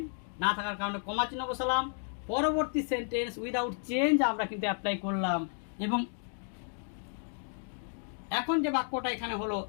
না থাকার কারণে কমা চিহ্ন বসালাম। পরবর্তী সেন্টেন্স উইদাউট চেঞ্জ আমরা কিন্তু অ্যাপ্লাই করলাম। এবং এখন যে বাক্যটা এখানে হলো,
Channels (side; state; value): right; silent; 56 dB below the other